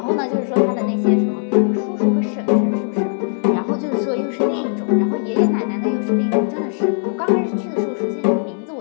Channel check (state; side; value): silent; right; digital silence